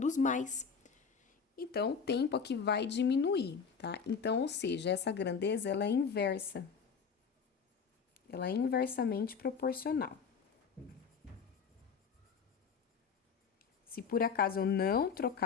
mais. Então, o tempo aqui vai diminuir, tá? Então, ou seja, essa grandeza, ela é inversa. Ela é inversamente proporcional. Se por acaso eu não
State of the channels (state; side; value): quieter; right; 6.1 dB